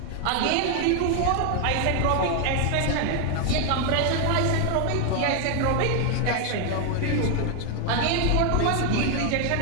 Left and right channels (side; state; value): both; different; correlation 0.00